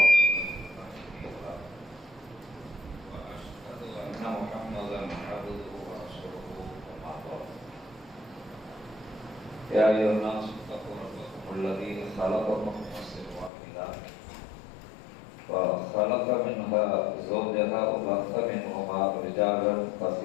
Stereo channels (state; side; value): drops out; right; at 13.5 s